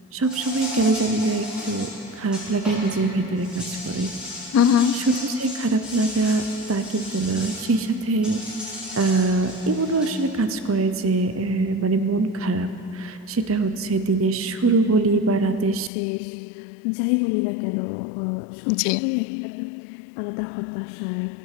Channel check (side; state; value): right; drops out; at 15.9 s